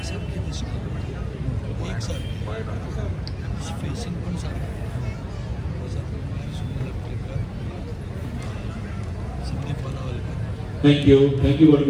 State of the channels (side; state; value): both; identical; correlation 1.00